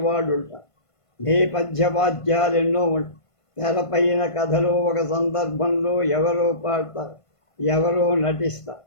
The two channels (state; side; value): late; right; 1.5 ms